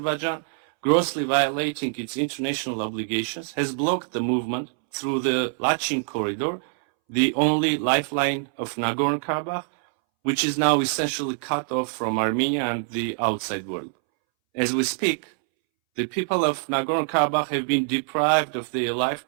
grossly violating its international obligations, has blocked the movement through the Lachin corridor, the only lifeline of Nagorno-Karabakh, which is now essentially cut off from Armenia and the outside world. As we speak, the people of Nagorno-Karabakh have been deprived of their right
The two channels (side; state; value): left; silent; 62 dB below the other